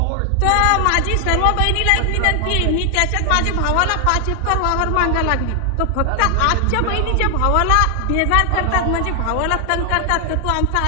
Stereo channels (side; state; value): both; different; correlation 0.00